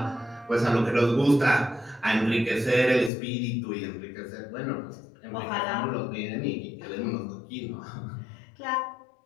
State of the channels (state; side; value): drops out; right; at 3.1 s